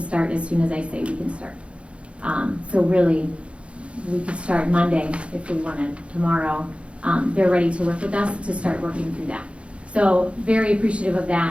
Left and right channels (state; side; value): late; left; 0.060 ms